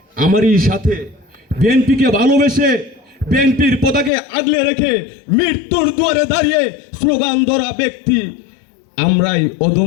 আমারই সাথে বিএনপিকে ভালোবেসে বিএনপির পতাকে আগলে রেখে মৃত্যুর দুয়ারে দাঁড়িয়ে স্লোগান ধরা ব্যক্তি। আমরাই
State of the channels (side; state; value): right; drops out; at 4.1 s